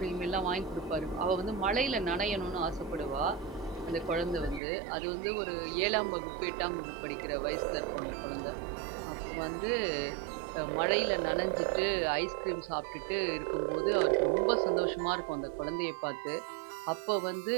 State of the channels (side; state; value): left; drops out; at 4.6 s